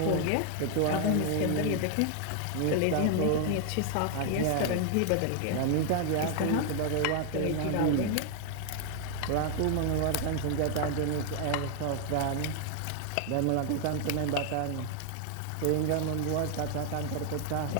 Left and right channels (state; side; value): different; both; correlation 0.00